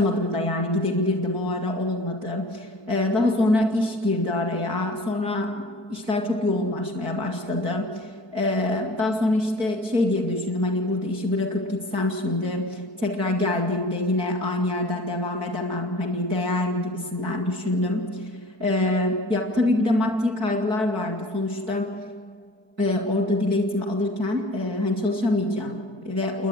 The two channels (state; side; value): late; left; 4.6 ms